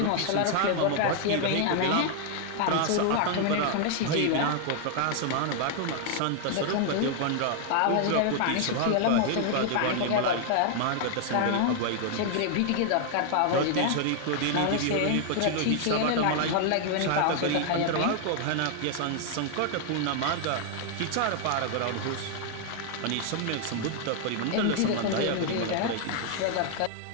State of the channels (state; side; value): different; both; correlation 0.00